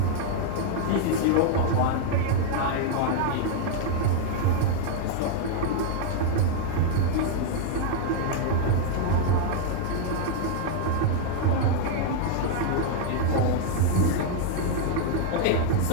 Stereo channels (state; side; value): different; both; correlation 0.00